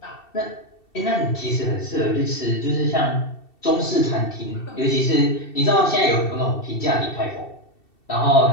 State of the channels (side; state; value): right; late; 2.7 ms